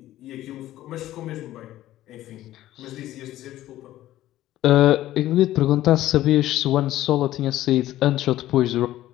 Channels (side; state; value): right; quieter; 14.3 dB